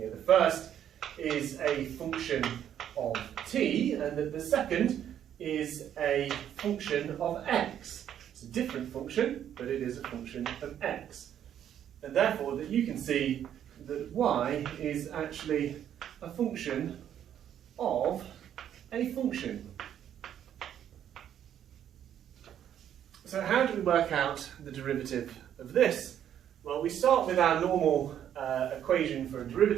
The first is a function of t, and that the second is a function of x. It's a different function, but it is a function of x. And therefore, that you can see that y is actually a function of a function. So how do we work out the derivative of this? Well, we start with our normal equation for a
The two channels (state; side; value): quieter; left; 10.0 dB